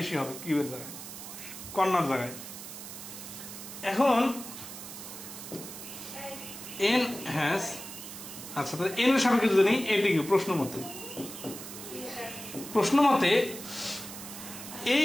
হবে কিউ এর জায়গায়, কর্নার জায়গায়। এখন এন হ্যাজ, আচ্ছা তাহলে এন এর সাপেক্ষে যদি নেই এটি কি প্রশ্ন মতে এই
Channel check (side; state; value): right; noise; hiss, 11 dB below the sound